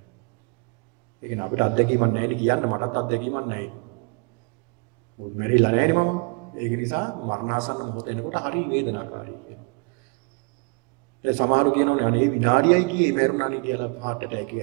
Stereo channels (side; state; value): left; quieter; 32.5 dB